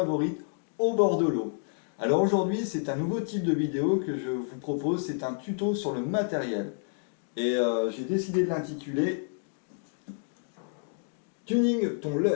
au bord de l'eau. Alors aujourd'hui c'est un nouveau type de vidéo que je vous propose, c'est un tuto sur le matériel. Et j'ai décidé de l'intituler Tuning ton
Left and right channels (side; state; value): right; silent; digital silence